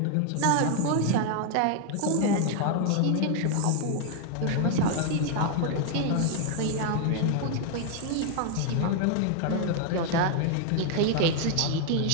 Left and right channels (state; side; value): different; both; correlation 0.00